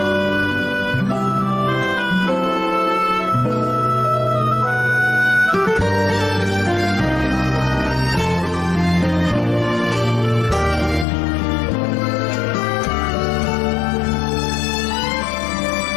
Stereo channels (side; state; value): right; drops out; at 11.1 s